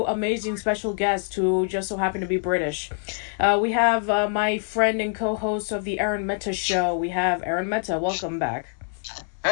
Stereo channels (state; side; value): silent; right; digital silence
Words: amazing special guests who just so happen to be British. We have my friend and co-host of the Aaron Meta Show. We have Aaron Meta. Welcome back.